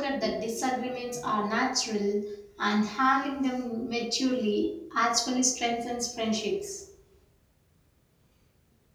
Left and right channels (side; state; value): both; identical; correlation 1.00